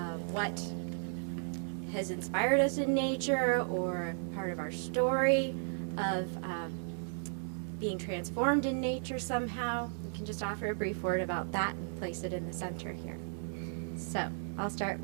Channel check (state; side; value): silent; left; digital silence